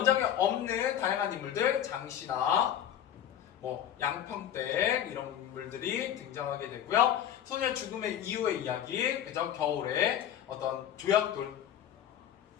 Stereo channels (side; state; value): right; quieter; 10.3 dB